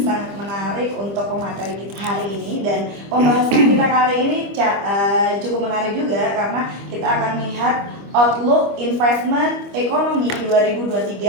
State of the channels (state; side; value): late; left; 25 ms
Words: menarik untuk pemateri kita hari ini. Dan pembahasan kita kali ini cukup menarik juga karena kita akan melihat outlook investment ekonomi